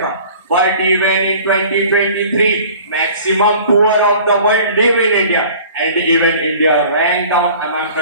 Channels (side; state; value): both; inverted; correlation -0.47